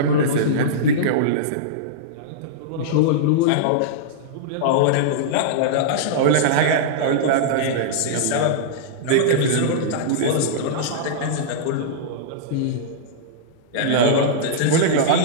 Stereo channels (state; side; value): different; both; correlation -0.03